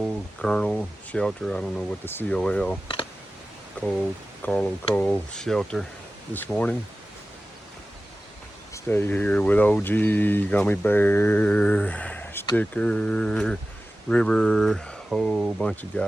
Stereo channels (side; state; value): both; normal; correlation 0.95